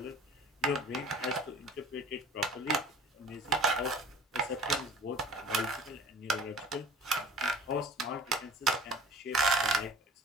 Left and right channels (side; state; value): both; normal; correlation 0.45